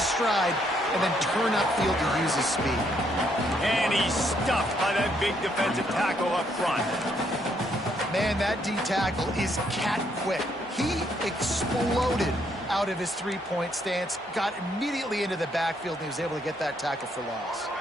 stride and then turn upfield to use his speed. And he's stuffed by that big defensive tackle up front. Man, that D tackle is cat quick. He exploded out of his three-point stance, got immediately into the backfield, and he was able to get that tackle for loss.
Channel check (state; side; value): normal; both; correlation 0.72